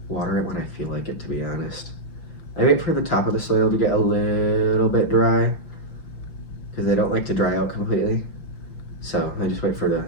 water it when I feel like it, to be honest. I wait for the top of the soil to get a little bit dry because they don't like to dry out completely. So I just wait for the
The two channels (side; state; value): right; late; 5.9 ms